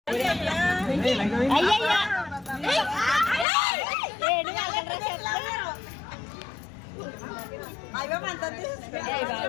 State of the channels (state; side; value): drops out; right; at 3.5 s